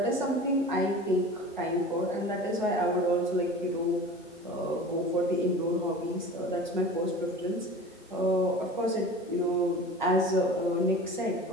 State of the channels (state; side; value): normal; both; correlation 0.38